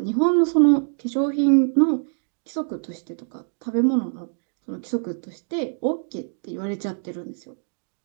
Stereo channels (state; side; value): silent; left; 59 dB below the other